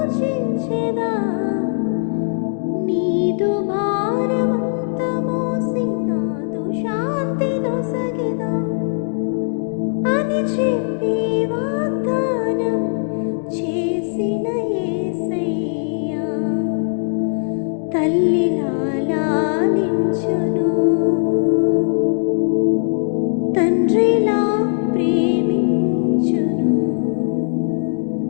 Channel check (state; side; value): silent; right; digital silence